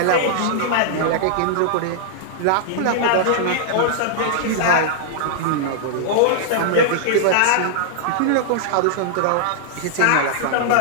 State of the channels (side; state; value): both; different; correlation -0.01